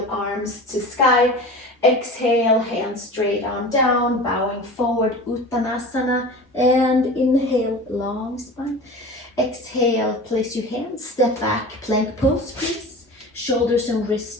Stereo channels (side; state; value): both; normal; correlation 0.35